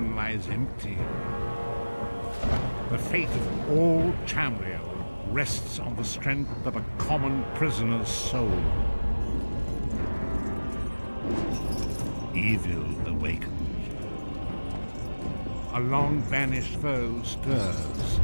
lies empty, the fate of all Tamriel rests on the strength of a common prisoner's soul. Evil awakens. A long-banished foe stirs.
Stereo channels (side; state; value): both; inverted; correlation -1.00